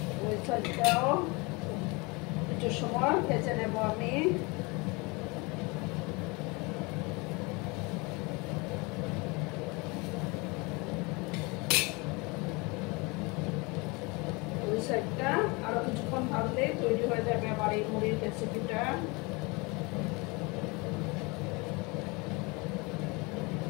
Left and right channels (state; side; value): quieter; right; 27.1 dB